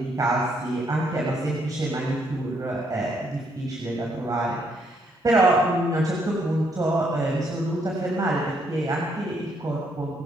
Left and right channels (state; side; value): normal; both; correlation 0.73